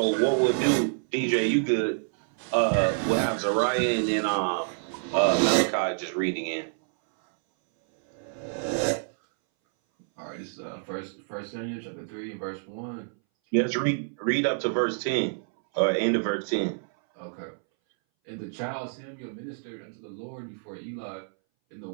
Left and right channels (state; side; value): silent; left; 59 dB below the other